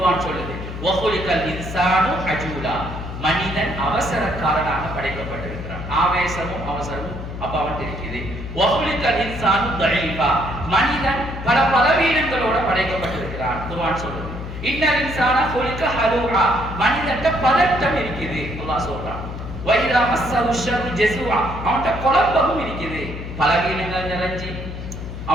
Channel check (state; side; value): noise; left; hum, 8 dB below the sound